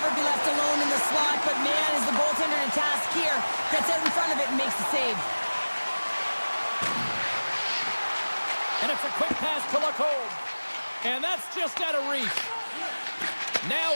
be left alone in the slot, but man, is the goaltender in a task here. Gets out in front of it and makes the save. And it's a quick pass to Lacombe. And that's just out of reach. Now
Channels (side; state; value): both; inverted; correlation -1.00